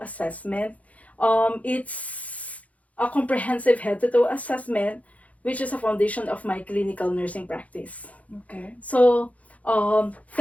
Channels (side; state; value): right; late; 0.068 ms